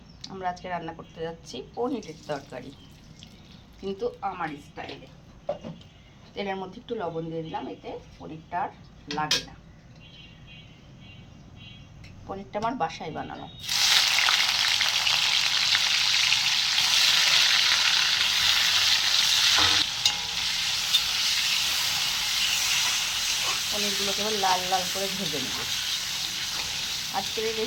আমরা আজকে রান্না করতে যাচ্ছি পনিরের তরকারি, কিন্তু আমার স্টাইলে। তেলের মধ্যে একটু লবণ দিয়ে দিলাম, এতে পনিরটা আর লাগে না। পনিরটা আমার বাসায় বানানো। পনিরগুলোকে এবার লাল লাল করে ভেজে নেব। আজকের এই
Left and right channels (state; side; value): identical; both; correlation 1.00